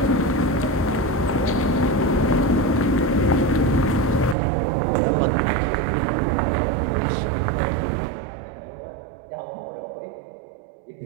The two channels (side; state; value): left; drops out; at 4.4 s